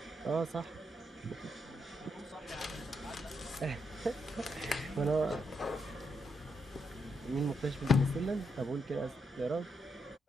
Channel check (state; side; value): normal; both; correlation 0.79